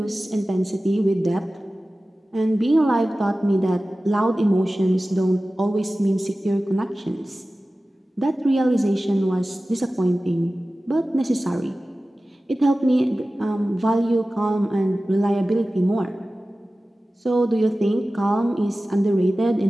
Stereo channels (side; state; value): both; normal; correlation 0.96